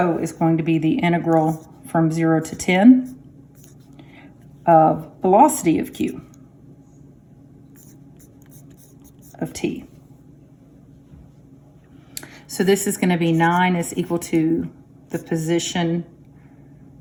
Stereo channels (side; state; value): both; identical; correlation 1.00